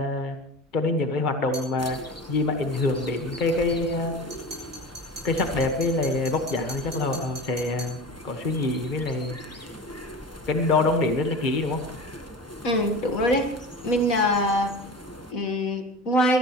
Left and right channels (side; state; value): both; normal; correlation 0.33